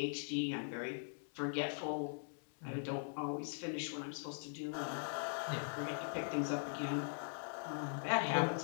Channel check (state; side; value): silent; right; digital silence